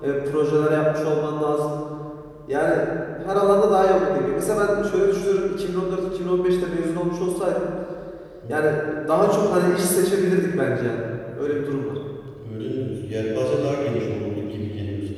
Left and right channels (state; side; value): identical; both; correlation 1.00